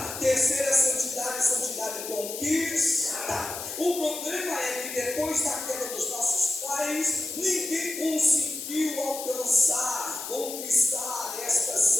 Terceira santidade, santidade conquistada. O problema é que depois da queda dos nossos pais, ninguém conseguiu alcançar, conquistar esta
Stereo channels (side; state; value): left; noise; hiss, 8 dB below the sound